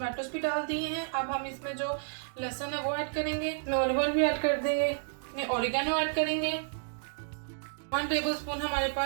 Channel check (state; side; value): silent; left; digital silence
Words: भी डाल दिए हैं। अब हम इसमें जो लहसुन है वो ऐड करेंगे, ऑलिव ऑयल भी ऐड कर देंगे, ऑरिगेनो ऐड करेंगे, 1 टेबलस्पून हमारे